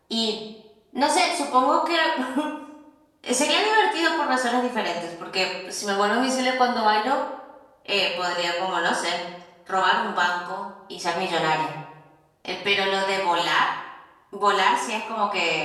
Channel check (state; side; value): identical; both; correlation 1.00